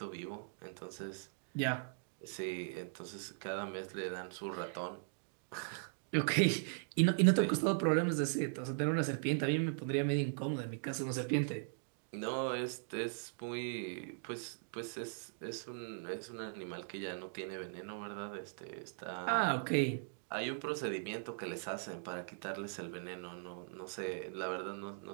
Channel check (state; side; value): silent; left; digital silence